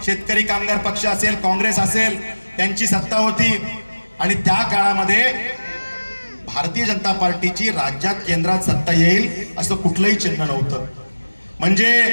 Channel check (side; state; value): both; inverted; correlation -1.00